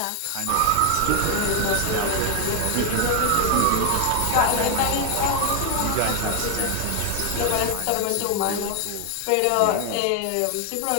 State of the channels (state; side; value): different; both; correlation 0.00